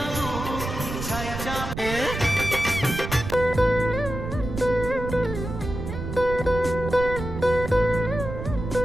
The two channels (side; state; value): right; noise; rumble, 7 dB below the sound